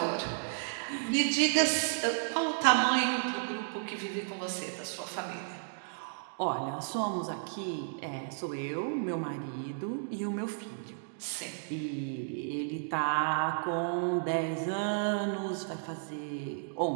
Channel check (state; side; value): silent; left; digital silence